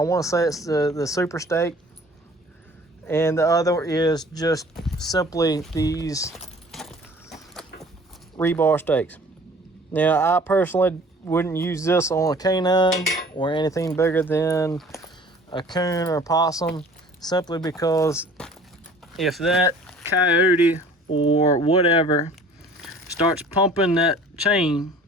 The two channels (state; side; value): normal; both; correlation 0.49